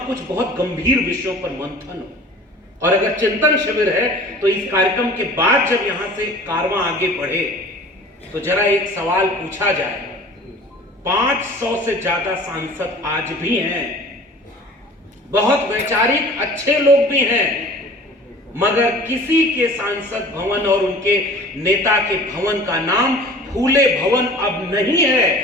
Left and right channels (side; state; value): both; normal; correlation 0.44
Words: बहुत गंभीर विषयों पर मंथन हो। और अगर चिंतन शिविर है तो इस कार्यक्रम के बाद जब यहां से कारवां आगे बढ़े तो जरा एक सवाल पूछा जाए। 500 से ज्यादा सांसद आज भी हैं, बहुत वैचारिक अच्छे लोग भी हैं, मगर किसी के सांसद भवन और उनके नेता के भवन का नाम फूले भवन अब नहीं